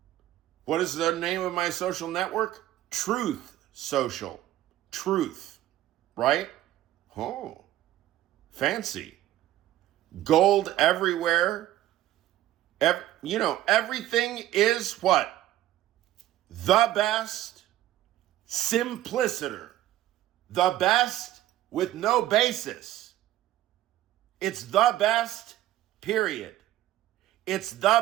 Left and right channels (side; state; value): left; quieter; 14.0 dB